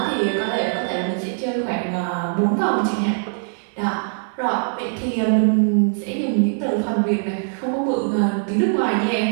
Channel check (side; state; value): left; silent; digital silence